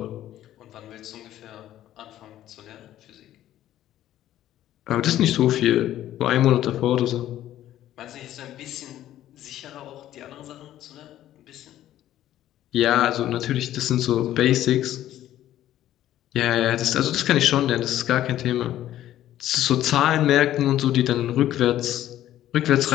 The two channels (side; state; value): right; quieter; 12.8 dB